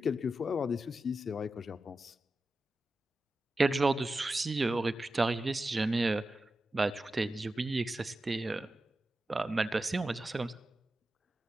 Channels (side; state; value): both; normal; correlation 0.92